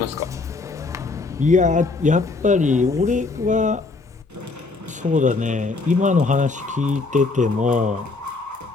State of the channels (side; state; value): right; quieter; 3.7 dB